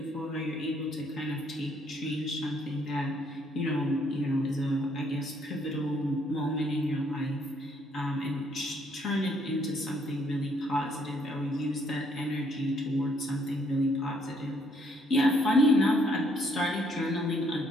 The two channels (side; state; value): both; normal; correlation 0.68